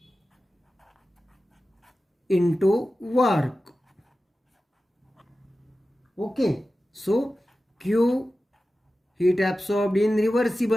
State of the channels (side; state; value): both; normal; correlation 0.94